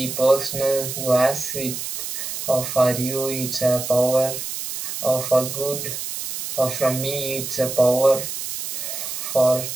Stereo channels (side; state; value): right; noise; hiss, 6 dB below the sound